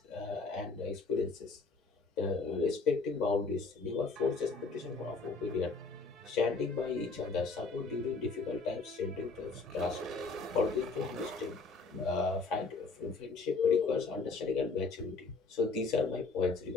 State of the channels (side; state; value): right; quieter; 4.1 dB